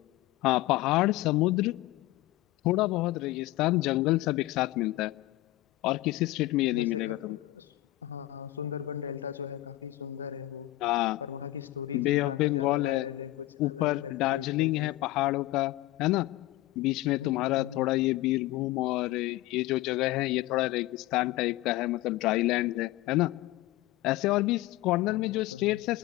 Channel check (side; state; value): right; quieter; 17.3 dB